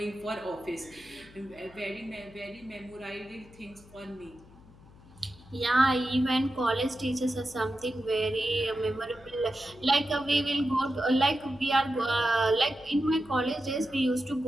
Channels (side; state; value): left; noise; hum, 23 dB below the sound